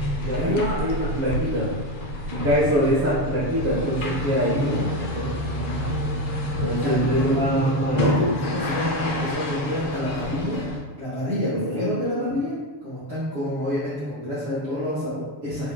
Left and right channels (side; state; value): left; late; 6.6 ms